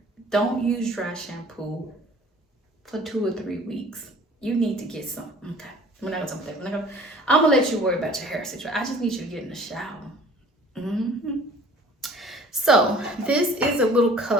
Don't use dry shampoo for 2 or 3 weeks. You need to get some. Okay. We're not going to talk about that. I'm going to let you worry about your hair situation. I just need you to get in the shower. So this is a little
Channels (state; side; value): normal; both; correlation 0.50